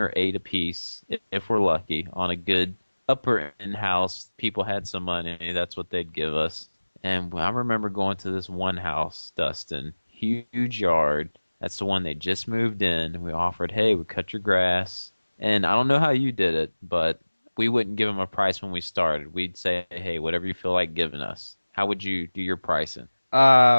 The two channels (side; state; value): both; inverted; correlation -1.00